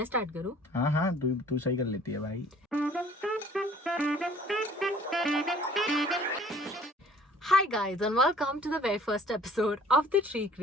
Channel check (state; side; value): normal; both; correlation 0.54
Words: start करूं? हाँ तू सही कर लेती है भाई। Hi guys and welcome to the very first episode of